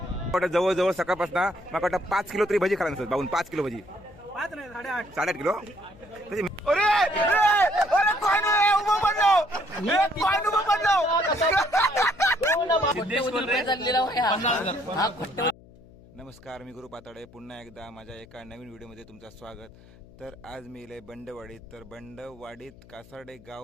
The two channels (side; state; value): left; noise; hum, 23 dB below the sound